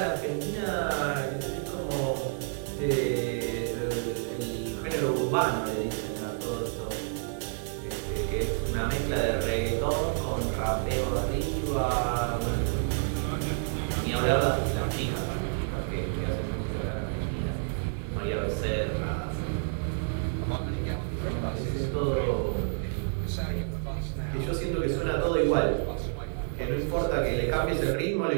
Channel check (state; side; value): silent; left; 58 dB below the other